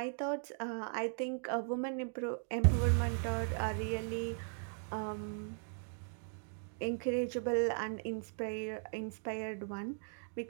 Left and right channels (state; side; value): silent; left; 52 dB below the other